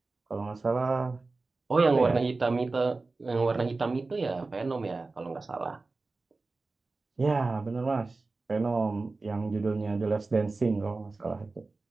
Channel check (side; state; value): left; quieter; 3.6 dB